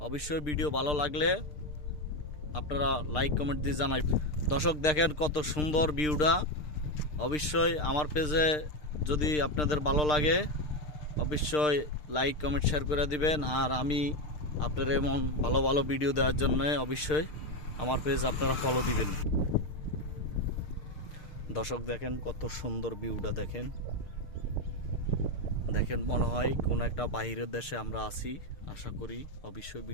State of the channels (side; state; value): right; late; 6.6 ms